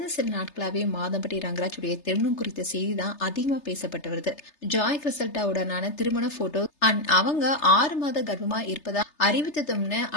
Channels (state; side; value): late; right; 3.3 ms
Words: சில நாட்களாவே மாதம்பட்டி ரங்கராஜுடைய திருமணம் குறித்த செய்தி தான் அதிகமா பேசப்பட்டு வருது. ஜாய் கிறிசல்டாவுடனான திருமண போட்டோ அண்ட் அவங்க 6 மாத கர்ப்பமா இருப்பதா அறிவித்ததும்னு